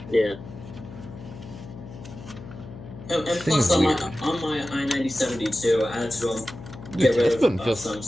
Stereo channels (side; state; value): left; noise; hum, 14 dB below the sound